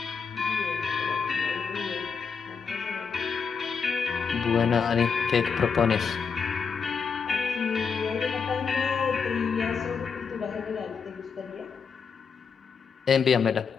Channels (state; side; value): quieter; right; 5.9 dB